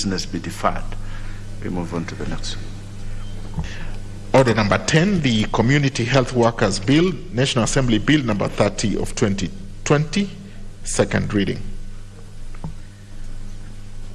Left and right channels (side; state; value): both; identical; correlation 1.00